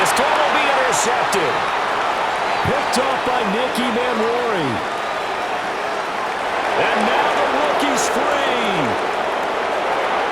throw will be intercepted. Picked off by Nicky Manwari. And now the rookie's free.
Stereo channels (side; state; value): both; identical; correlation 1.00